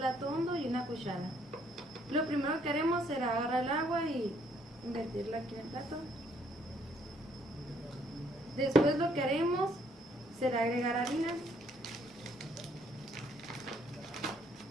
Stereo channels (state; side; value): normal; both; correlation 0.67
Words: hondo y una cuchara. Lo primero que haremos será agarrar el agua y invertirla aquí en el plato. Después lo que haremos será agregar harina.